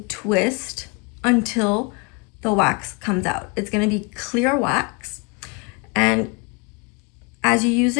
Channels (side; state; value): right; quieter; 29.9 dB